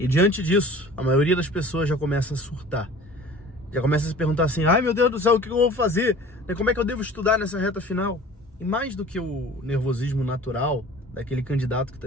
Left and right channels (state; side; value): normal; both; correlation 0.44